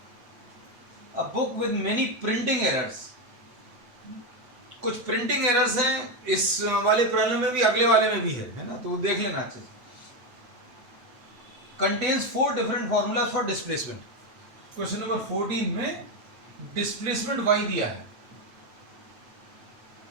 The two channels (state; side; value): late; left; 8.2 ms